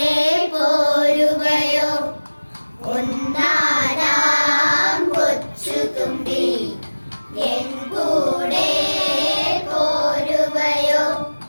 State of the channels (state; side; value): inverted; both; correlation -1.00